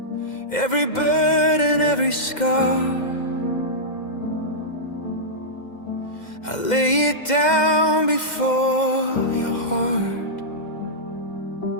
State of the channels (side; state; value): right; late; 2.1 ms